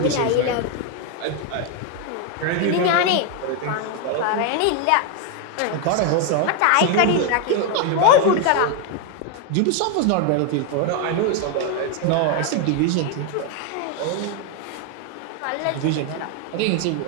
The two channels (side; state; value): both; different; correlation 0.01